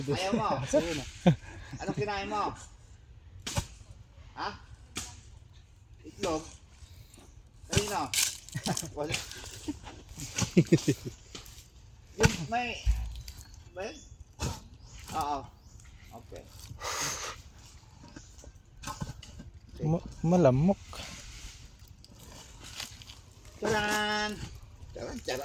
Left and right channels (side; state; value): both; identical; correlation 1.00